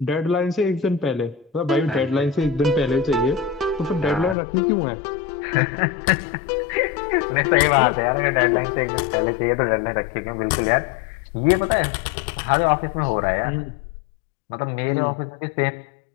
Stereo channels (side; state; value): right; drops out; at 4.4 s